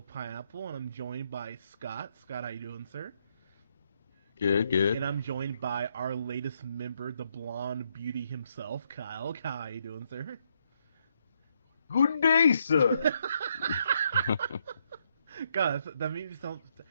Pineapple, and I'm joined by Scott. Scott, how you doing, sir? Good, And good. I'm joined by our latest member, the blonde beauty himself, Kyle. Kyle, how you doing, sir? Good day, sir. God, that made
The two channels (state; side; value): inverted; both; correlation -0.76